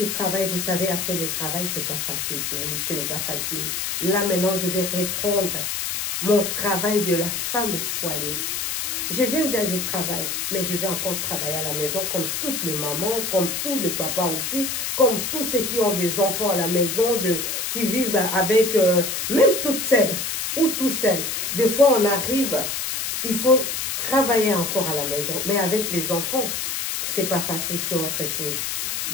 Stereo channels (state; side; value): noise; left; hiss, 2 dB below the sound